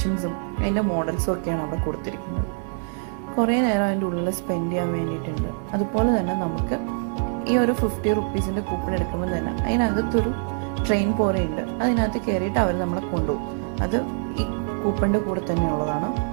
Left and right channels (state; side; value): silent; left; 62 dB below the other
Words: അതിൻ്റെ മോഡൽസും ഒക്കെയാണ് അവിടെ കൊടുത്തിരിക്കുന്നത്. കുറേ നേരം അതിൻ്റെ ഉള്ളിൽ സ്പെൻഡ് ചെയ്യാൻ വേണ്ടിയിട്ടുണ്ട്. അതുപോലെ തന്നെ നമുക്ക് ഈ ഒരു 50 റുപ്പീസിൻ്റെ കൂപ്പൺ എടുക്കുമ്പോൾ തന്നെ അതിനകത്തൊരു ട്രെയിൻ പോലെയുണ്ട്. അതിനകത്ത് കയറിയിട്ട് അവർ നമ്മളെ കൊണ്ടുപോകും. അത് ഈ കൂപ്പണിൻ്റെ കൂടെ തന്നെയുള്ളതാണ്.